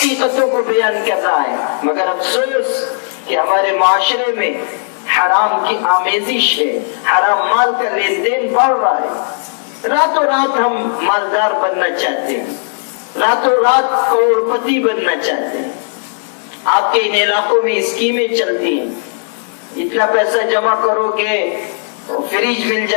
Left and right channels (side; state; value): right; silent; 70 dB below the other